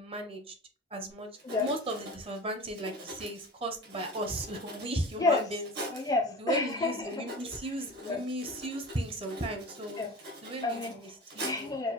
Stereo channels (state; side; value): normal; both; correlation 0.35